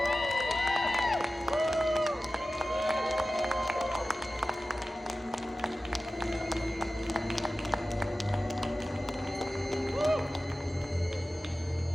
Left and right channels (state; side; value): normal; both; correlation 0.95